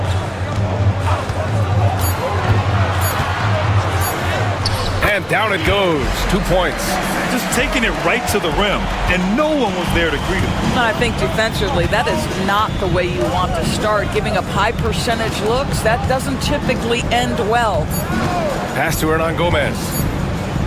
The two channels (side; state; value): both; identical; correlation 1.00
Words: And down it goes. 2 points. Just taking it right to the rim, and no one was there to greet him. I think defensively, that is not the way you want to start. Giving up high percentage looks, that doesn't typically end well. Pass to Hernan Gomez.